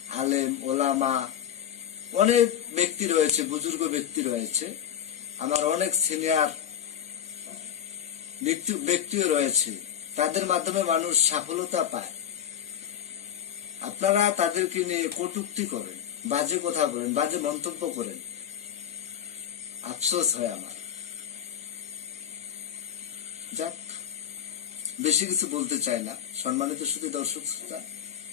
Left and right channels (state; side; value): quieter; right; 9.6 dB